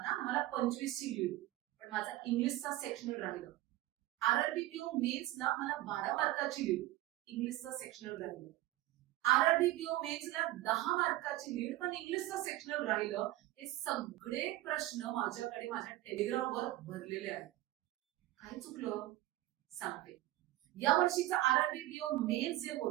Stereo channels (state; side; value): quieter; left; 16.1 dB